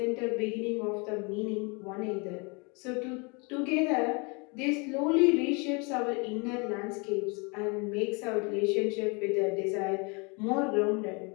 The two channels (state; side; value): quieter; right; 31.3 dB